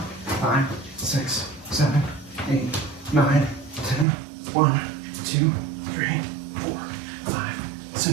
5, 6, 7, 8, 9, 10. 1, 2, 3, 4, 5,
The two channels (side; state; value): left; drops out; at 4.0 s